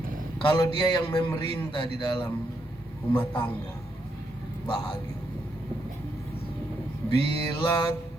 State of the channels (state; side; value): normal; both; correlation 0.79